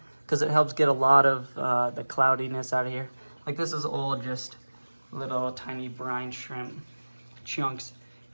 because it helps get a lot of the cloudiness out of here. Like this is all just little tiny brine shrimp chunks.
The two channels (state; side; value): inverted; both; correlation -1.00